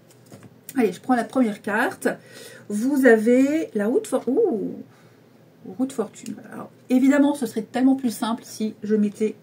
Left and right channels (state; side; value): identical; both; correlation 1.00